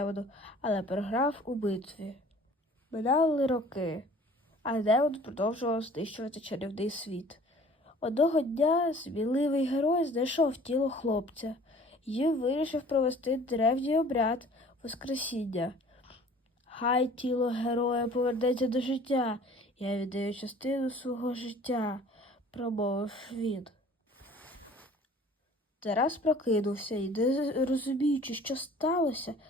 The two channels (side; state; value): both; normal; correlation 0.50